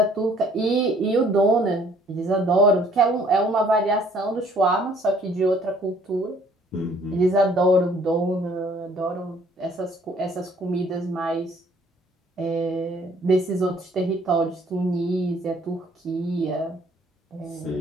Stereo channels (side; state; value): both; normal; correlation 0.59